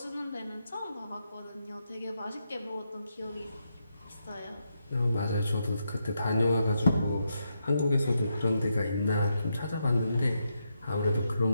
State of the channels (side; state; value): both; inverted; correlation -0.82